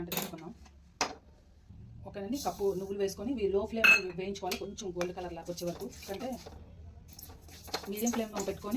తీసుకుందాం. ఓకేనండి. కప్పు నువ్వులు వేసుకొని ఇవి లో ఫ్లేమ్ వేయించుకోవాలి. కొంచెం గోల్డ్ కలర్ లాగా వచ్చే వరకు. అంటే మీడియం ఫ్లేమ్లో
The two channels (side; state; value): both; identical; correlation 1.00